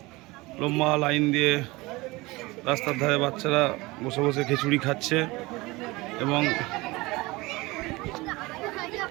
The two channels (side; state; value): left; quieter; 22.2 dB